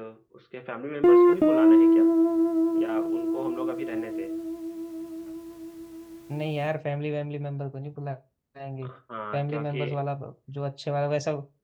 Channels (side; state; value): both; identical; correlation 1.00